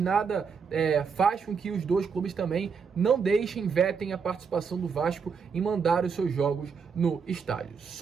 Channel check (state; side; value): quieter; left; 5.9 dB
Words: faz com que os dois clubes também não deixem, vetem a participação do Vasco em mandar os seus jogos no estádio.